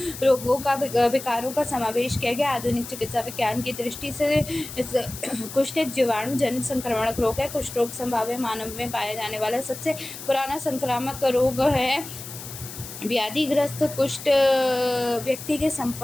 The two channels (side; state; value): left; noise; hiss, 12 dB below the sound